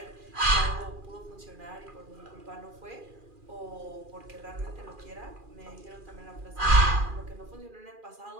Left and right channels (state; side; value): late; left; 2.4 ms